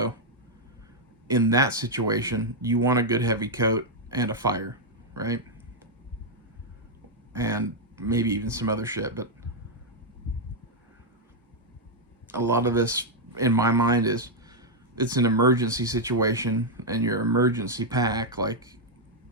in that situation, you want a good heavy coat and a fire, right? And maybe even some other shit, but a lot of this, in my mind, is it's an emergency situation, and your emergency pack, like,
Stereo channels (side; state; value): both; normal; correlation -0.02